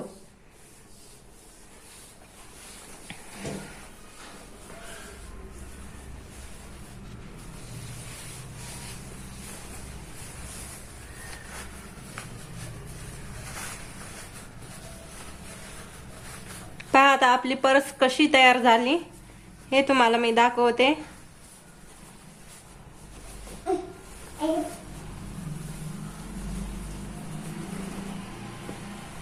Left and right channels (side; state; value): both; identical; correlation 1.00